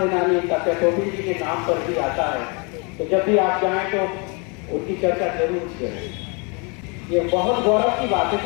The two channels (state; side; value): quieter; right; 32.4 dB